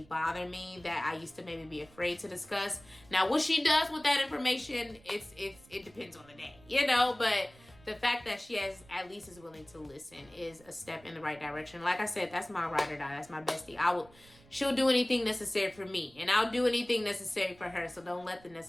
bother me that I used to maybe be afraid to discuss. Now, what she does with that information, it depends on the day, you know. But the fact that she at least is willing to listen is a step in the right direction. Like I said, that's my ride or die. That's my bestie. She'll do anything necessary for me, and I'll do anything necessary for her. So don't let the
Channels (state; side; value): noise; right; rumble, 25 dB below the sound